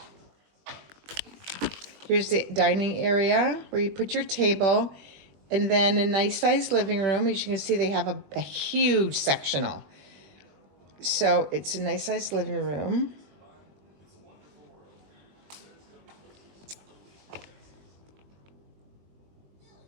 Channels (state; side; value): late; left; 21 ms